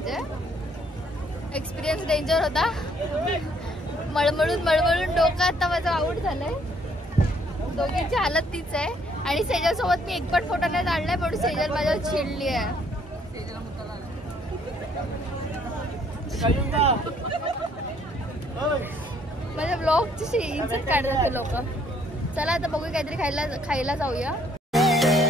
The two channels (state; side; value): normal; both; correlation 0.65